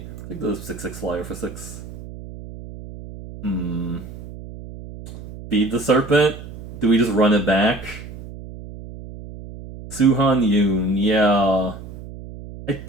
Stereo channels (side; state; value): right; noise; hum, 13 dB below the sound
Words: I think the 6/6 flyer for 6. Hmm. Feed the Serpent? Do we just run it back? Suhan Yoon, yeah. I